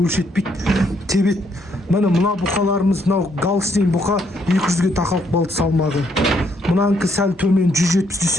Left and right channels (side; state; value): both; normal; correlation 0.72